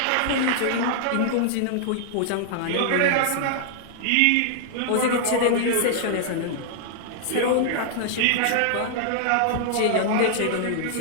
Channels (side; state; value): both; different; correlation -0.01